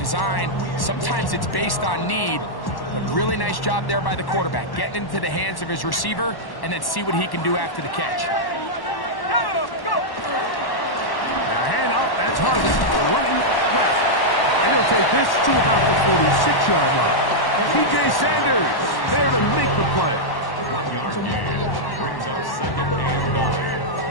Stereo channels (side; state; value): right; late; 1.1 ms